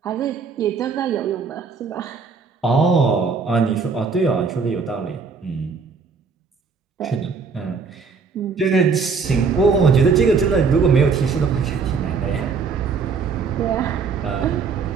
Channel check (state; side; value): quieter; left; 5.2 dB